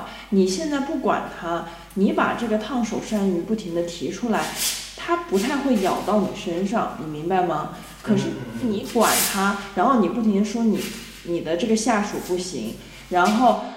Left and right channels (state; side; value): identical; both; correlation 1.00